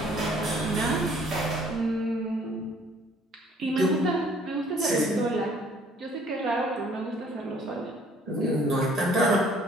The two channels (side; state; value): both; normal; correlation 0.58